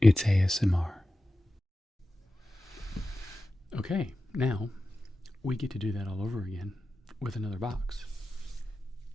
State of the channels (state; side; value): normal; both; correlation 0.93